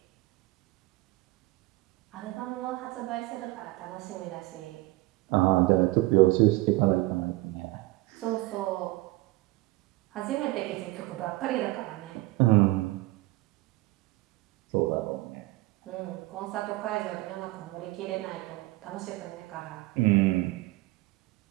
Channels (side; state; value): left; quieter; 20.5 dB